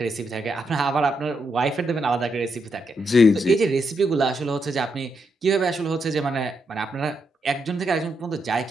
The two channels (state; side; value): normal; both; correlation 0.81